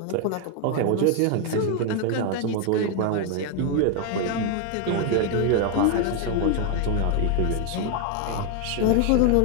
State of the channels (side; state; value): both; different; correlation 0.01